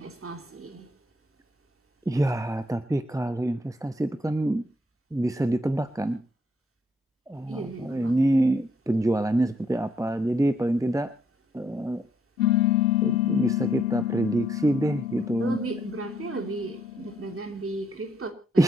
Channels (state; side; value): normal; both; correlation 0.72